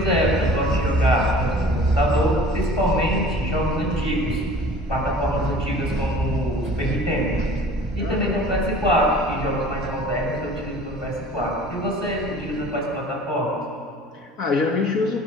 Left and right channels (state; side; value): normal; both; correlation 0.46